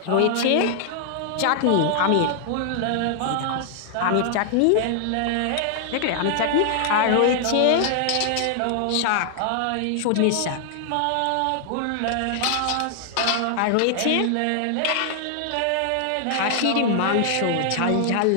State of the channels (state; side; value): different; both; correlation 0.00